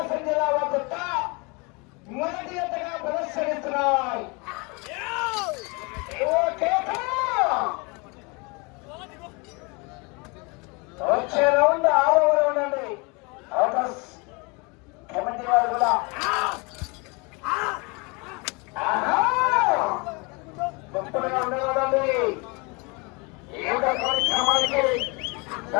జిల్లా వద్ద మొదటి ఎత్తగా ప్రదర్శనిస్తున్నాయి. వచ్చే రౌండ్ 6వ రౌండ్ అండి. అవుటర్స్ కమిటీ వారు కూడా గొప్పగా ఉండేవాడండి. ఈ యొక్క కార్యక్రమానికి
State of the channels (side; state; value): right; quieter; 29.1 dB